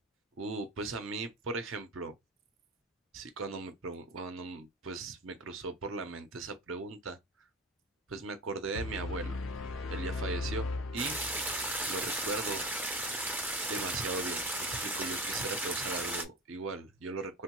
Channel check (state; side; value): normal; both; correlation 0.31